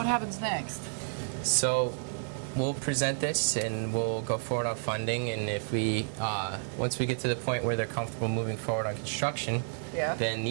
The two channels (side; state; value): left; silent; 57 dB below the other